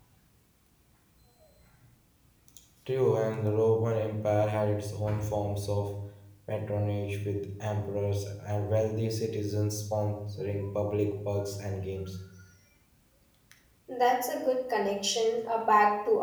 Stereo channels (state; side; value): identical; both; correlation 1.00